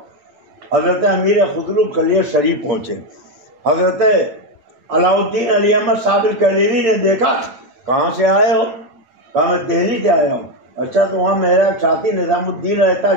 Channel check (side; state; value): left; late; 9.0 ms